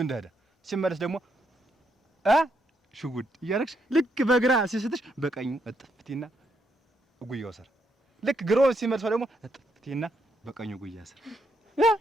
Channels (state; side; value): normal; both; correlation 0.77